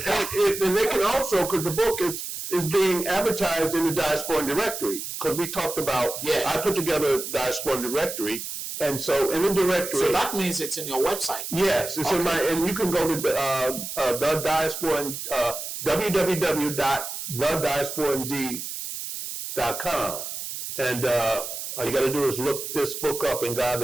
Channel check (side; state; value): right; noise; hiss, 7 dB below the sound